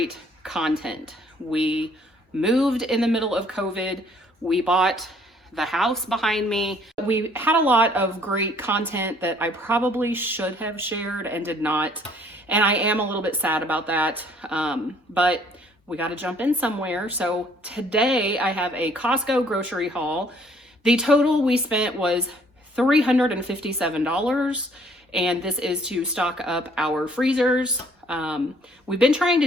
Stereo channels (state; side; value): normal; both; correlation 0.61